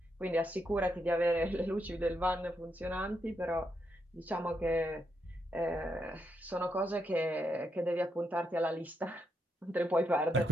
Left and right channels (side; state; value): both; normal; correlation 0.80